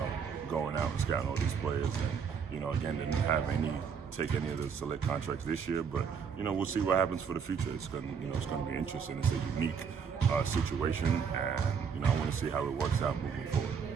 going out and scouting all these players, and again, didn't have take any of the select contracts this year, but we'll see what happens for the future. It's going to be interesting. It's a unique situation, and I want to see how it works out moving forward.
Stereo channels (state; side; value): quieter; left; 6.6 dB